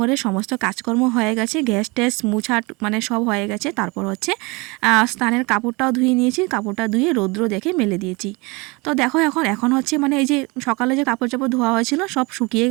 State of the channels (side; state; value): left; quieter; 26.5 dB